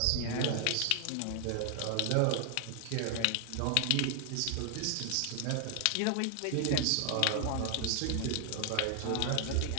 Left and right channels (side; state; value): both; different; correlation 0.00